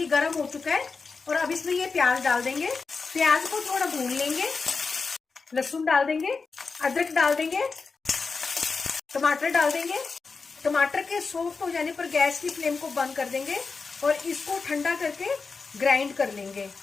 गर्म हो चुका है। और अब इसमें ये प्याज डाल देंगे। प्याज को थोड़ा भून लेंगे। लहसुन डाल देंगे, अदरक डाल देंगे, टमाटर डाल देंगे। टमाटर के सॉफ्ट हो जाने पर गैस की फ्लेम को बंद कर देंगे और इसको ठंडा करके ग्राइंड कर लेंगे।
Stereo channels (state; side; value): quieter; right; 4.6 dB